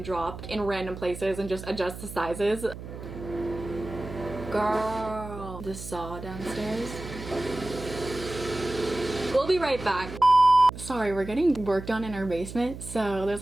drop in random places and just adjust the sizes. Girl, the saw downstairs. We'll be right back. Sorry, we're getting work done in our basement, so there's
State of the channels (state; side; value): noise; right; hum, 11 dB below the sound